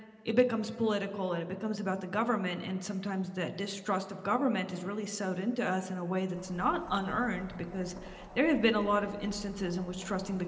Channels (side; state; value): both; identical; correlation 1.00